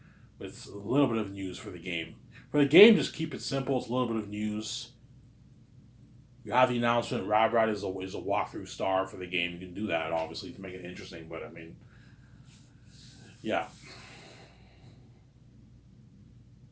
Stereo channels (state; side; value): identical; both; correlation 1.00